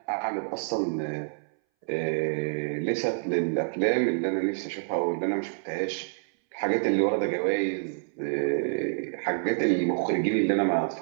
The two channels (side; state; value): left; silent; 60 dB below the other